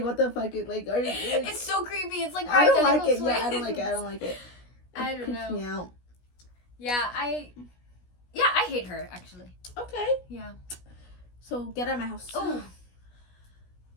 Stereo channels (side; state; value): right; late; 16 ms